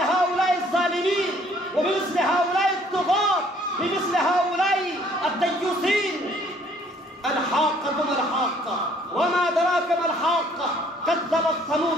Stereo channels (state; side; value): normal; both; correlation 0.60